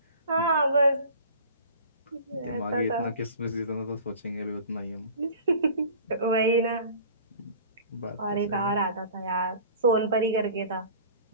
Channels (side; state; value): both; inverted; correlation -0.43